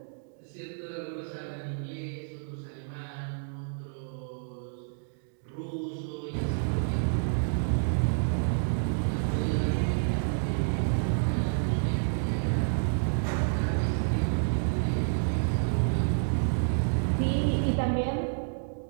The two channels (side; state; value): left; silent; digital silence